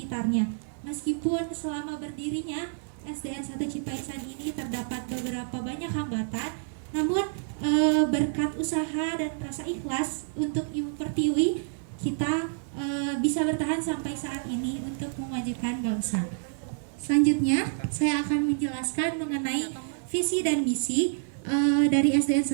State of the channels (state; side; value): silent; left; 59 dB below the other